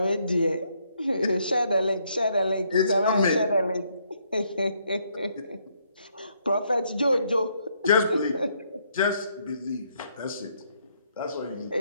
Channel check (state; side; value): inverted; both; correlation -0.72